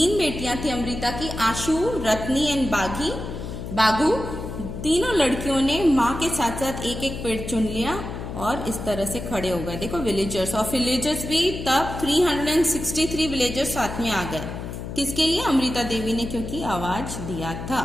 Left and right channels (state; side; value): noise; left; hum, 8 dB below the sound